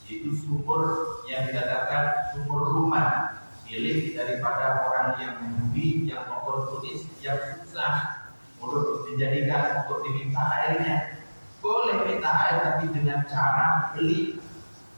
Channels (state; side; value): inverted; both; correlation -1.00